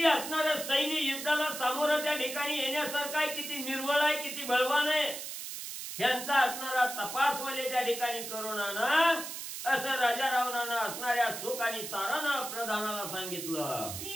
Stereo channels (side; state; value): right; noise; hiss, 7 dB below the sound